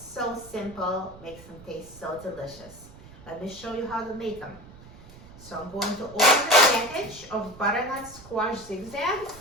so simple, makes them taste so delicious. Let me show you how to make them. So I'm going to open the package of butternut squash zigzags,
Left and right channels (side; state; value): right; noise; rumble, 19 dB below the sound